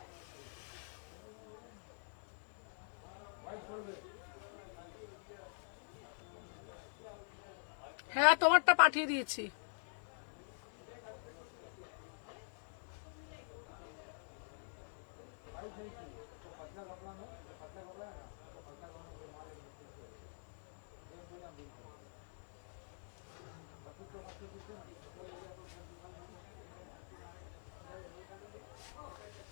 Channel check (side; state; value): right; silent; digital silence